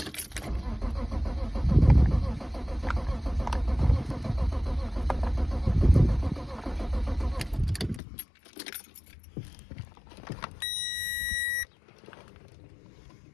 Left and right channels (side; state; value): right; drops out; at 8.0 s